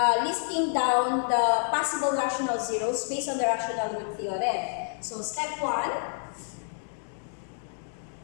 listing down the possible rational zeros based on the rational root theorem. So step 1,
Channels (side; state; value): right; silent; digital silence